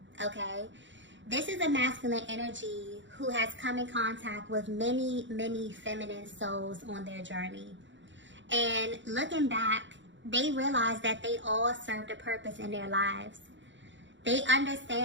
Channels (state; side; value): late; left; 0.54 ms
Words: okay? This is a masculine energy who has come in contact with many, many feminine souls on their journey. And looking back, they realize that they all served a purpose in their lives. They